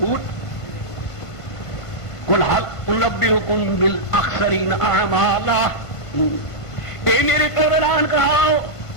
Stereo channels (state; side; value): late; right; 1.5 ms